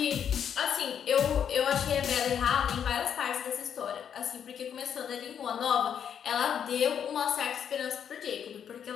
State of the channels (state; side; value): quieter; right; 8.4 dB